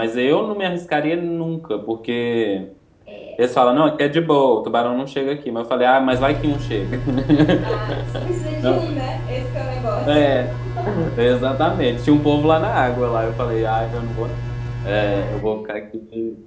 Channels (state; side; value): identical; both; correlation 1.00